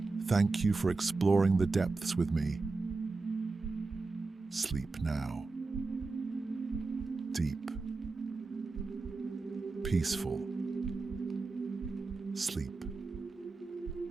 Thank you for exploring the depths with me. Sleep now. Deep. Peaceful. Sleep.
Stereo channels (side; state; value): left; quieter; 3.7 dB